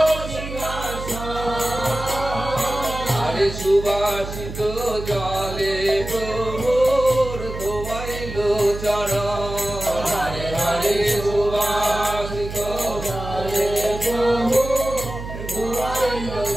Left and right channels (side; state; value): right; noise; hum, 9 dB below the sound